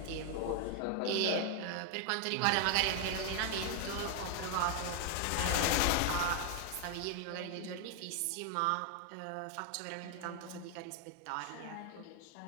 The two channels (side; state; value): both; different; correlation 0.00